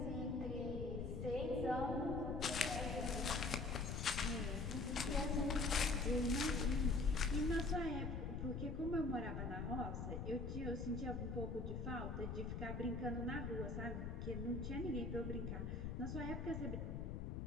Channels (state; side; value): noise; left; rumble, 3 dB below the sound